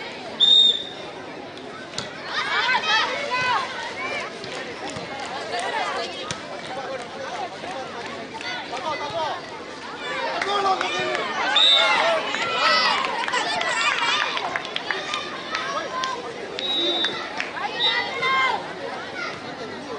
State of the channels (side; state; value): both; identical; correlation 1.00